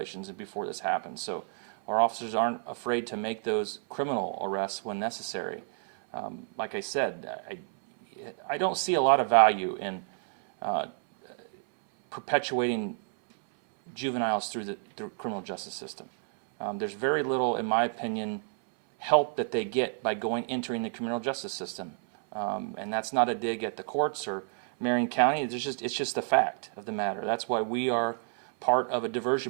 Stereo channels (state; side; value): silent; left; 58 dB below the other